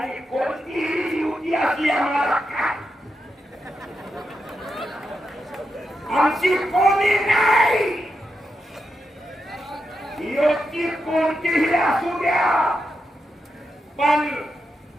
कोणतीही युती असली आम्हाला काय आमची कोणी नाही युती कोणतीही असू द्या पण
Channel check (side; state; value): both; normal; correlation 0.86